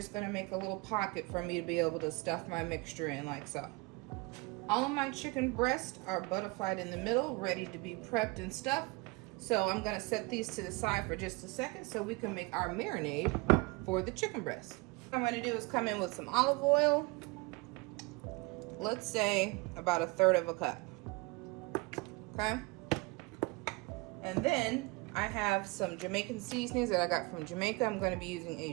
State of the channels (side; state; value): left; quieter; 25.9 dB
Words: going to make a little pocket for me to be able to stuff my mixture in like so. All of my chicken breasts are butterflied in the middle, ready to be prepped and stuffed. So I'm going to set these to the side for just a second so we can make our marinade for the chicken breast. What I'm going to do is come in with some olive oil. Let's say about 1/3 cup. Okay? And then I have some Jamaican seasonings that I got from Jamaica. I'm going to be using